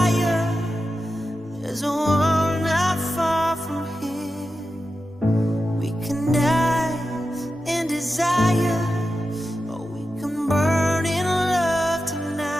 There's a world not far from here. We can die in desire, or we can burn in love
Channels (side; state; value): both; normal; correlation 0.91